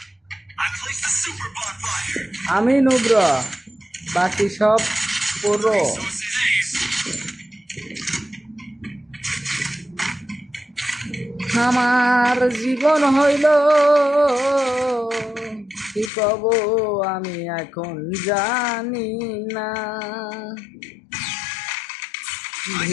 I place the super bonfire. আমি নুব্র, বাকি সব পুরো। আমার জীবন হইল কি কব আমি এখন জানি না।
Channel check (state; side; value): drops out; right; at 16.1 s